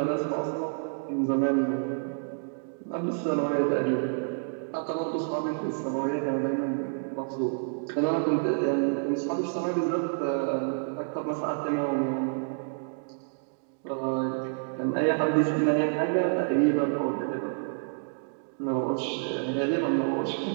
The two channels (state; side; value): silent; left; digital silence